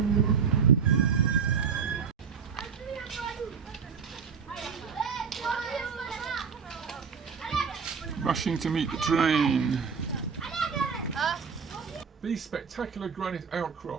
Rushing to meet the train. These spectacular granite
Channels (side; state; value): left; quieter; 6.2 dB